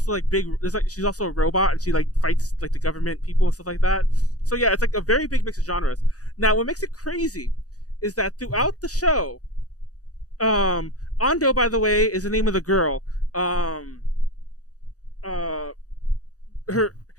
like big. There's like she's also a robot and she like fights like the government people and stuff like that. So yeah, it's like a very big mix of genres. Now, what makes it crazy is that throughout the show, Ando, by the way, is the name of the girl. Her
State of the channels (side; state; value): right; late; 0.67 ms